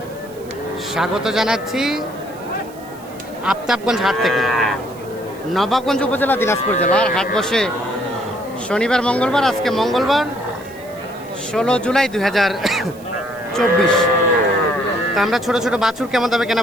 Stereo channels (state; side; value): noise; right; hiss, 24 dB below the sound